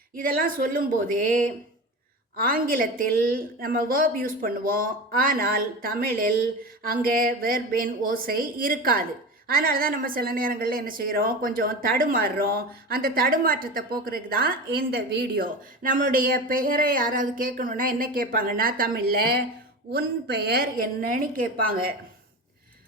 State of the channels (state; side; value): normal; both; correlation 0.27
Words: இதெல்லாம் சொல்லும்போதே ஆங்கிலத்தில் நம்ம வேர்ப் யூஸ் பண்ணுவோம். ஆனால் தமிழில் அங்கே வேர்பின் ஓசை இருக்காது. அதனால தான் நம்ம சில நேரங்களில் என்ன செய்கிறோம், கொஞ்சம் தடுமாறுறோம். அந்த தடுமாற்றத்தை போக்குறதுக்கு தான் இந்த வீடியோ. நம்மளுடைய பெயரை யாராவது கேட்கணுன்னா என்ன கேட்பாங்கன்னா, தமிழில் உன் பெயர் என்னன்னு கேட்பாங்க.